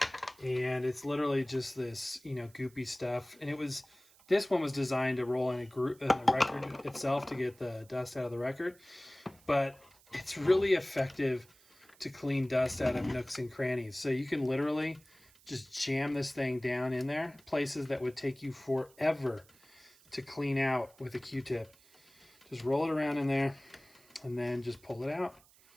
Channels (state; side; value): noise; right; hiss, 27 dB below the sound